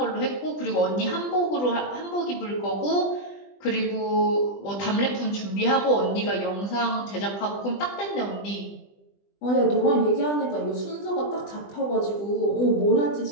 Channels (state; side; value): late; right; 20 ms